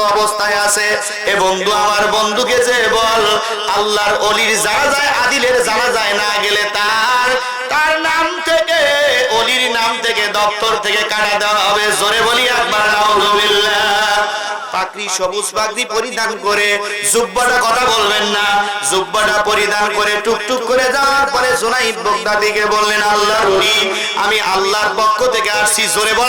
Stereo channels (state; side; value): identical; both; correlation 1.00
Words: অবস্থায় আছে। এ বন্ধু, আমার বন্ধুকে যে বল আল্লাহর ওলির জানাজায় আদিলের জানাজায় না গেলে তার নাম থেকে, ওলির নাম থেকে, দপ্তর থেকে কাটা দেওয়া হবে। জোরে বলি একবার নাউজুবিল্লাহ। পাগড়ি, সবুজ পাগড়ি পরিধান করে, জুব্বাটা কথা বলবেন না, জুব্বাটা পরিধান করে টুকটুক করে যাওয়ার পরে জুনাইদ বাগদাদীকে বললেন, আল্লাহর ওলি, আমি আল্লাহর পক্ষ থেকে আসছি। জোরে